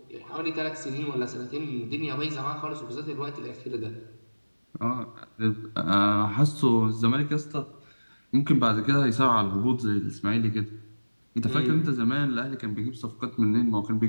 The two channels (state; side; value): inverted; both; correlation -1.00